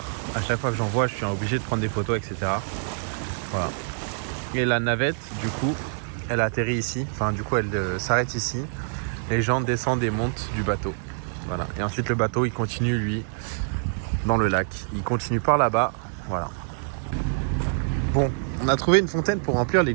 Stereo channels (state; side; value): silent; left; digital silence